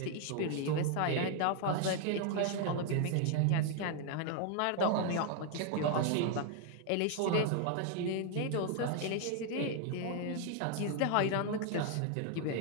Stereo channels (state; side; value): different; both; correlation 0.00